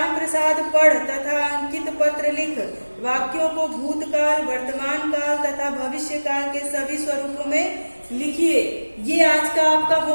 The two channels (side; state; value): both; inverted; correlation -1.00